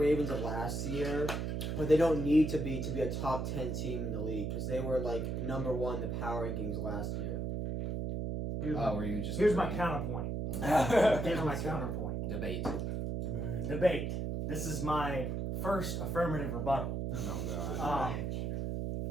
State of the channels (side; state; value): right; noise; hum, 1 dB below the sound